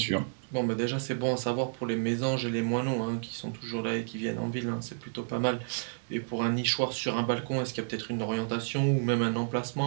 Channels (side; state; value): left; silent; digital silence